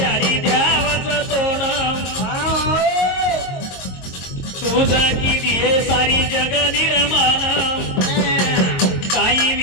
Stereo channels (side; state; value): right; late; 22 ms